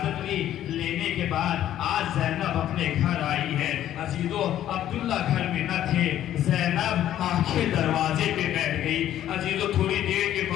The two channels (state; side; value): quieter; right; 11.9 dB